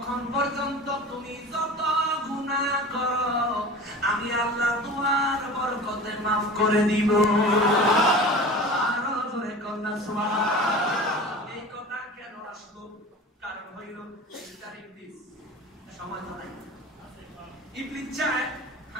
পর্যন্ত তুমি যত গুনাহ করো আমি আল্লাহ তোমার বরকতে মাফ করে দিব। আরো জোরে কন্যা সুবহানাল্লাহ। এই কথা কেন আসলো? কারণ হইল ইবলিস সময় তো নাই। ইবলিস চায়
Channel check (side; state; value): both; normal; correlation 0.36